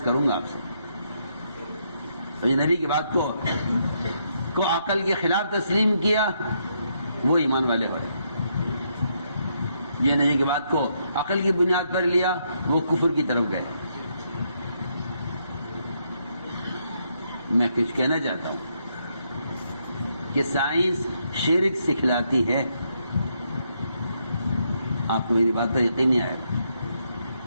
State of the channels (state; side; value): inverted; both; correlation -0.76